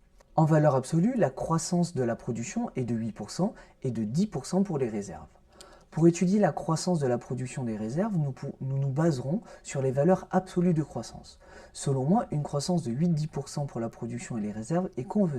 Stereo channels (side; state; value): both; identical; correlation 1.00